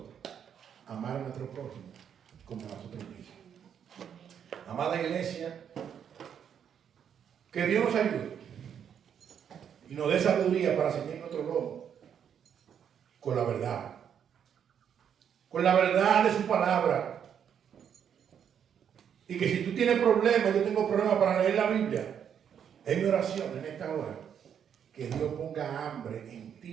a amar a nuestro prójimo como a nosotros mismos. Amada iglesia, que Dios nos ayude y nos dé sabiduría para seguir nuestro lomo con la verdad de su palabra. Y que si tú tienes problemas, yo tengo problemas para leer la Biblia, es mi oración en esta hora, que Dios ponga hambre en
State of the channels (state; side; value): quieter; left; 8.3 dB